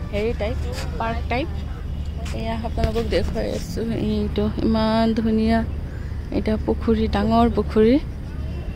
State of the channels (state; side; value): identical; both; correlation 1.00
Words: হেৰি টাইপ পাৰ্ক টাইপ এয়া আপোনালোকক দেখাই আছো এইটো ইমান ধুনিয়া এটা পুখুৰী ডাঙৰ পুখুৰী